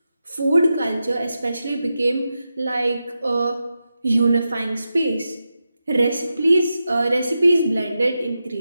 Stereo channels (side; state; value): both; inverted; correlation -0.90